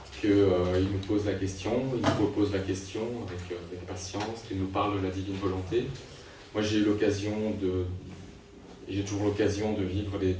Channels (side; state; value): both; identical; correlation 1.00